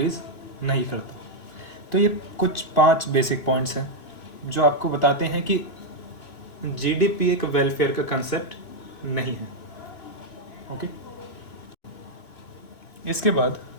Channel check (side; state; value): right; late; 2.8 ms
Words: नहीं करता। तो ये कुछ 5 बेसिक पॉइंट्स हैं जो आपको बताते हैं कि जीडीपी एक वेलफेयर का कंसेप्ट नहीं है। ओके, इसके बाद